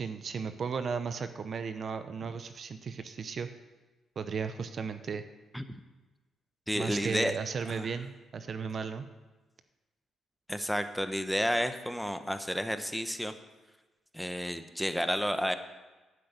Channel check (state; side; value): normal; both; correlation 0.92